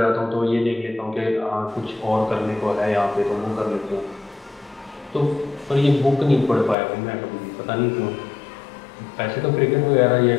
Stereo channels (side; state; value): right; drops out; at 6.8 s